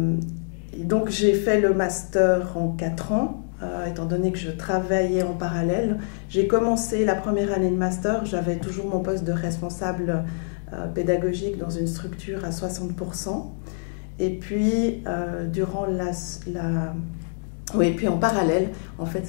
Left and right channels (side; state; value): right; silent; digital silence